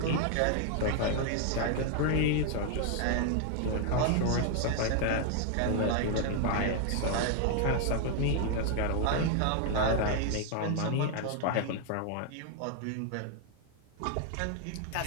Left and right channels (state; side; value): different; both; correlation 0.00